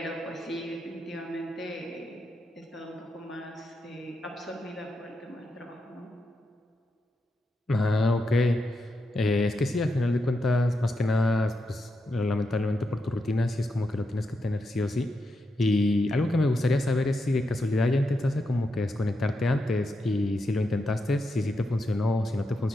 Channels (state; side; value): normal; both; correlation 0.85